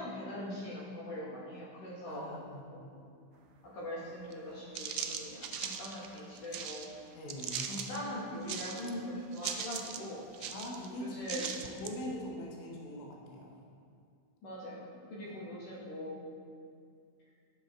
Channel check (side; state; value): right; late; 16 ms